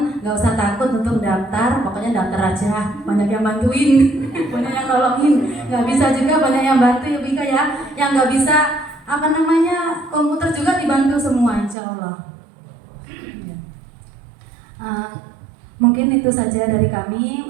nggak usah takut untuk daftar, pokoknya daftar aja. Banyak yang bantuin, banyak yang nolongin. Nggak bisa juga banyak yang bantu ya Bika ya. Yang nggak bisa komputer juga dibantu semua insya Allah. Mungkin itu saja dari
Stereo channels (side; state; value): left; drops out; at 11.8 s